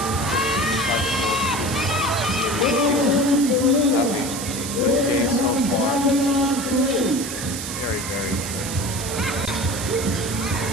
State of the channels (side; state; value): right; noise; hiss, 7 dB below the sound